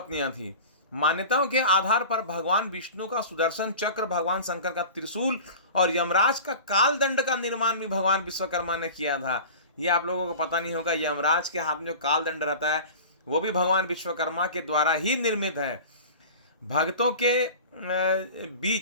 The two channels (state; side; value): inverted; both; correlation -0.37